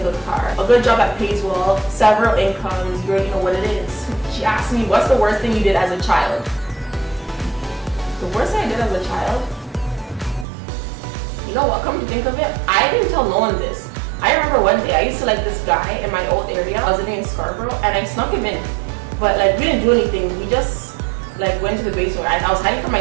good car. A good job that pays well, several incomes, you already know what it is. She asked me, what's the worst thing you did as a child? The worst thing I did as a child? You know what, come to think of it, I didn't tell no one this. I remember one day, I used to like this guy in my old area. I was living in Scarborough, and I snuck him in. But we didn't do anything. We just went to the basement. I was hiding from my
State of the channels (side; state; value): left; drops out; at 10.5 s